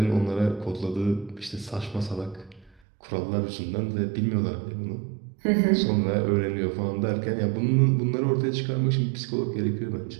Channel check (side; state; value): left; drops out; at 2.7 s